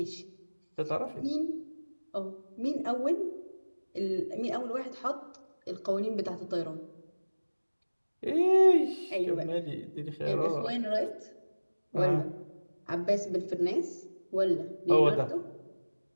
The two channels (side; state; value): both; inverted; correlation -1.00